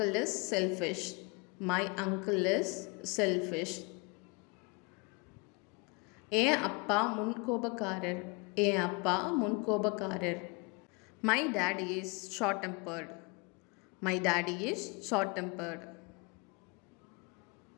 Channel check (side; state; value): right; quieter; 29.4 dB